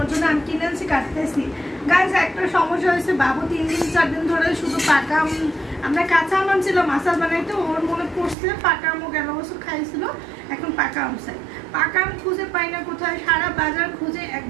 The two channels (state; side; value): drops out; left; at 8.3 s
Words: জন্য আম কিনে আনছি, কাটতেছি। গাইস একটা সমস্যা হয়েছে, বাবু 3 দিন 4 দিন ধরে শুধু পাকা আম, আমরা কাঁচা আম আনছিলাম আচার বানাইতে, ওর মনে পড়ছে পাকা আমও গেল বছর খাইছিল, এখন পাকা আম চাই। পাকা আম খুঁজে পাই না কোথায়, সারা বাজার খুঁজে